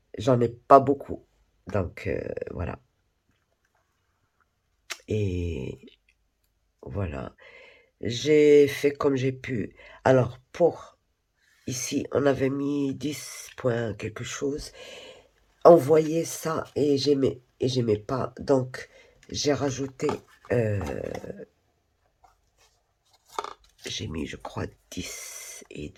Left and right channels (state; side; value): identical; both; correlation 1.00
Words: j'en ai pas beaucoup. Donc voilà. Et voilà. J'ai fait comme j'ai pu. Alors pour ici, on avait mis 10 points quelque chose. On voyait ça et j'aimais pas. Donc j'ai rajouté, euh, j'ai mis je crois